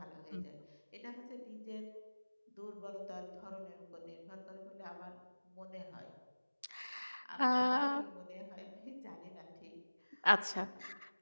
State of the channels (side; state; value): both; inverted; correlation -1.00